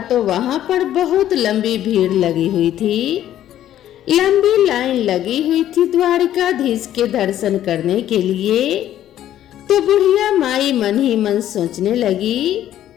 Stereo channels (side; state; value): right; quieter; 11.9 dB